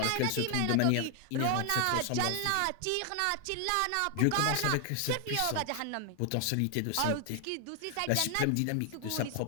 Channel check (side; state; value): both; different; correlation 0.00